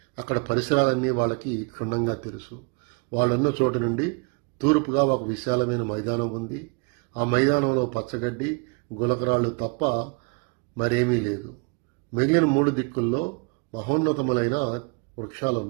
అక్కడ పరిసరాలన్నీ వాళ్ళకి క్షుణ్ణంగా తెలుసు. వాళ్ళున్న చోటు నుండి తూర్పుగా ఒక విశాలమైన మైదానం ఉంది. ఆ మైదానంలో పచ్చగడ్డి గులకరాళ్ళు తప్ప మరేమీ లేదు. మిగిలిన 3 దిక్కుల్లో మహోన్నతములైన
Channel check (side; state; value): left; quieter; 31.1 dB